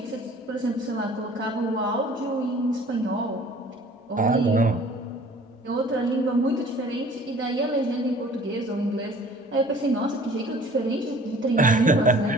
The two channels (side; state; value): both; normal; correlation 0.50